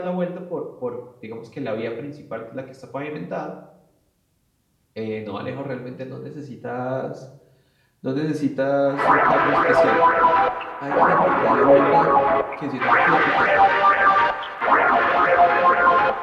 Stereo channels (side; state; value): both; identical; correlation 1.00